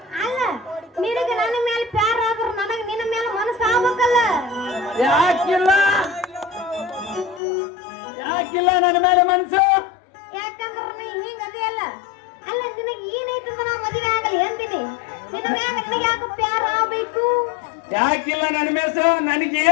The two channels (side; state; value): right; drops out; at 7.4 s